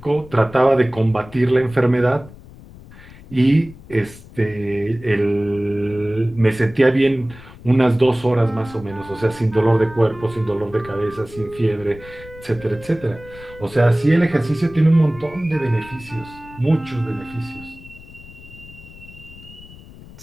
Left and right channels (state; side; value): noise; left; rumble, 19 dB below the sound